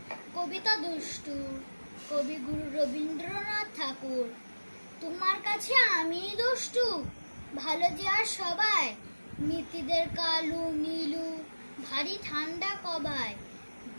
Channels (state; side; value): inverted; both; correlation -1.00